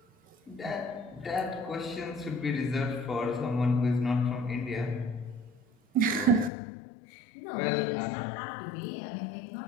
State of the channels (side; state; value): right; drops out; at 6.5 s